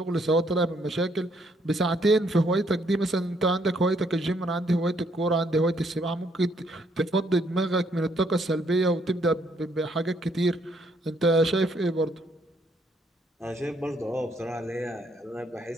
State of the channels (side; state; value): both; normal; correlation 0.70